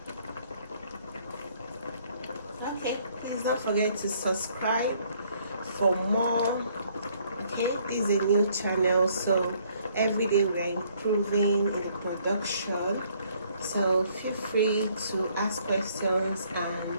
Okay, please don't forget to subscribe for more. Okay, this is a new channel, so every day we are improving in the production, so feel free to ask questions,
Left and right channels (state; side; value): inverted; both; correlation -0.65